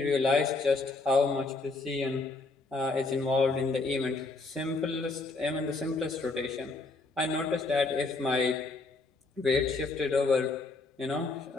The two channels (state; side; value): quieter; right; 3.6 dB